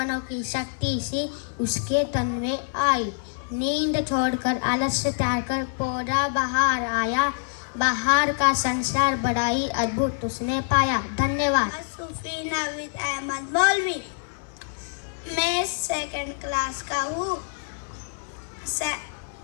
शक्ति सी उसके तन में आई। नींद छोड़कर आलस्य त्याग कर पौधा बाहर आया, बाहर का संसार बड़ा ही अद्भुत उसने पाया। धन्यवाद। सूफी नाविद अहमद मौलवी। मैं सेकंड क्लास का हूँ।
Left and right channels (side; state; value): right; silent; 58 dB below the other